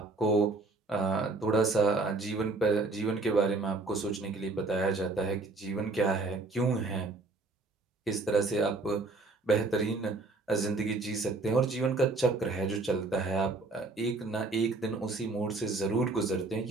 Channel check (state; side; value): quieter; left; 3.4 dB